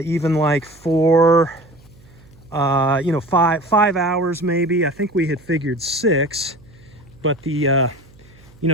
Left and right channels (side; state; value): right; noise; hum, 26 dB below the sound